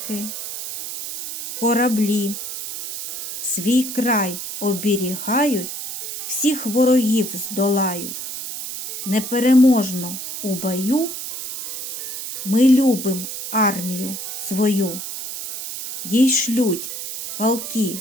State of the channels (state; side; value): noise; right; hiss, 8 dB below the sound